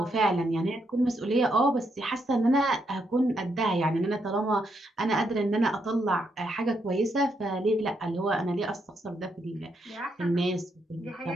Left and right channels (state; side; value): normal; both; correlation 0.78